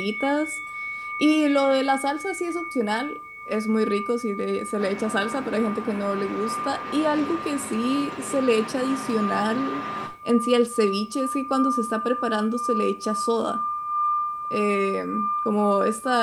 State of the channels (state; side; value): identical; both; correlation 1.00